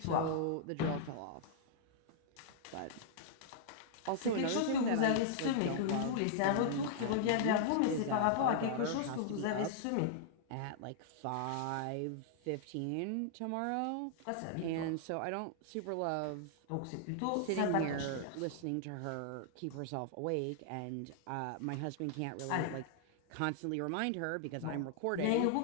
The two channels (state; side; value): different; both; correlation -0.01